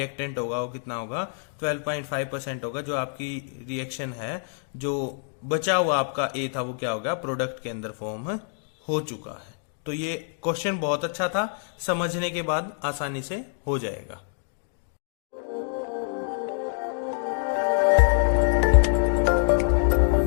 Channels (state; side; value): silent; right; 61 dB below the other